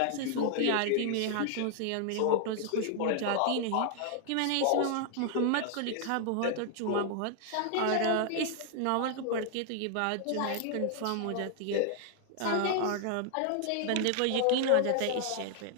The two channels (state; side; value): different; both; correlation 0.00